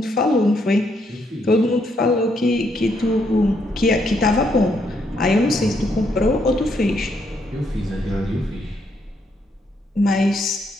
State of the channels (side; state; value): both; normal; correlation 0.75